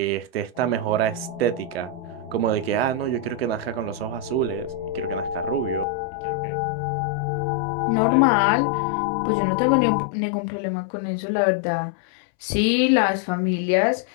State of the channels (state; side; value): drops out; right; at 5.9 s